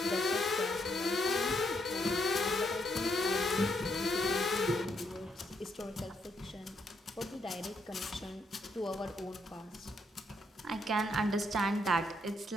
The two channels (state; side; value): normal; both; correlation 0.76